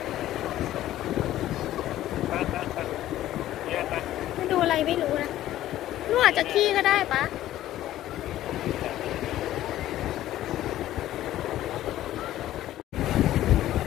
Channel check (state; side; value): quieter; right; 13.7 dB